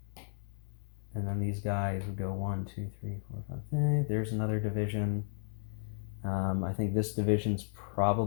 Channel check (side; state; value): right; silent; 55 dB below the other